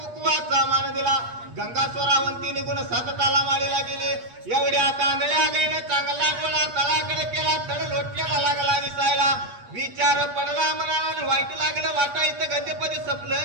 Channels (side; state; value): left; late; 8.4 ms